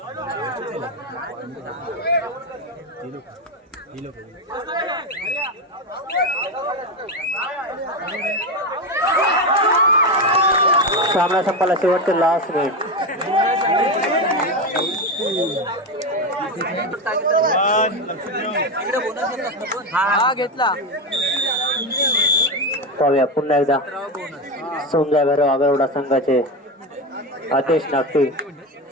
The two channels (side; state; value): both; normal; correlation 0.15